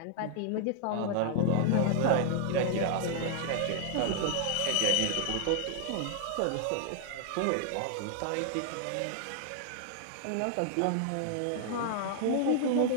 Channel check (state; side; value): different; both; correlation 0.00